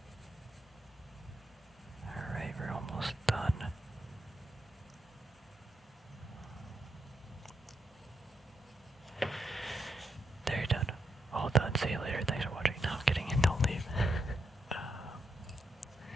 Alright, we're almost done. There, you're done. All done. See you later. Thanks for watching. No, I'm kidding. Don't leave.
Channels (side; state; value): both; normal; correlation 0.82